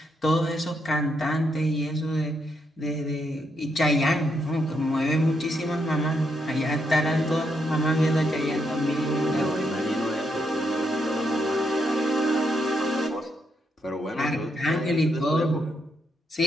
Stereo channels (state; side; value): normal; both; correlation 0.79